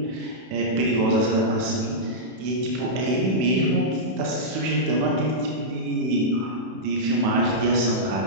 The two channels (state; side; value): late; left; 31 ms